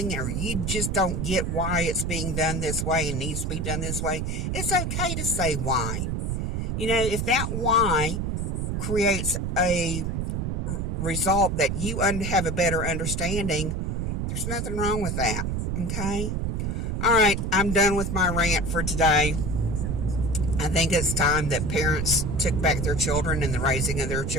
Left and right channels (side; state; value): right; noise; rumble, 1 dB below the sound